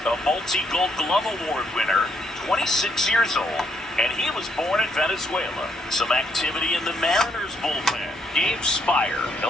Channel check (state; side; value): normal; both; correlation 0.72